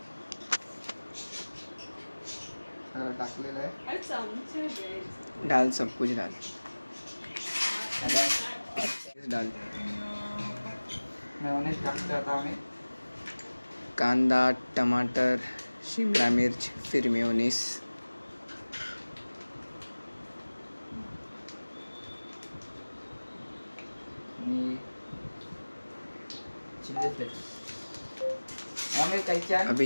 सगळं टाकलेलं आहे। अरे चमचे द्यायचे. डाल सब कुछ डाल डाल। मेयोनीज टाकतो आता आम्ही। कांदा, टमाटर, शिमला मिर्च, फिर मेयोनीज। आणि चिल्ली फ्लेक्स आम्ही काही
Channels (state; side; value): inverted; both; correlation -1.00